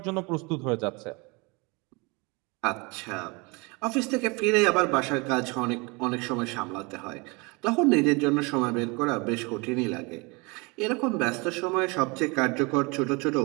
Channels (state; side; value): quieter; left; 27.9 dB